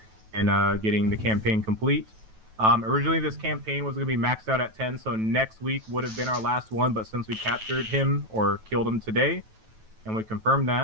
in getting the campaign complete. Originally this campaign was going to be maxed out at 10, so next week would have been our last one, but since we captured him or killed him today, and we confirmed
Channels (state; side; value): late; left; 9.2 ms